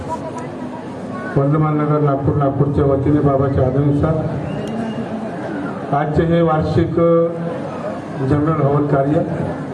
वर्धमान नगर नागपूरच्या वतीने बाबाच्या आदेशानुसार आजचे हे वार्षिक जनरल हवन कार्य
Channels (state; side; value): identical; both; correlation 1.00